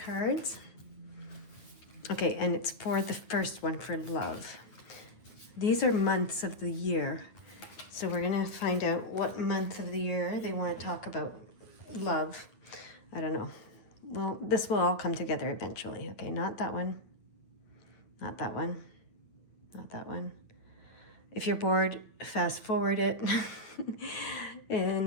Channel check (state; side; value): late; right; 9.1 ms